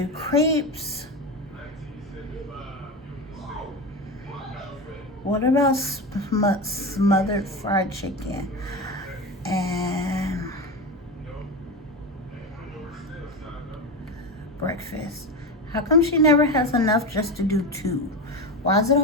crepes. What about smothered fried chicken? And breakfast. How come she never has enough just to do 2? Why is it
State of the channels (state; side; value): normal; both; correlation 0.20